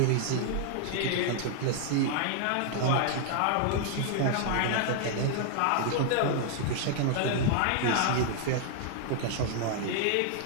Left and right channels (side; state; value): both; different; correlation 0.00